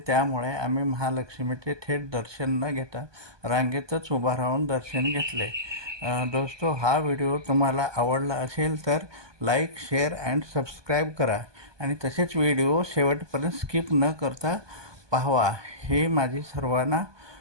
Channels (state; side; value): late; left; 1.2 ms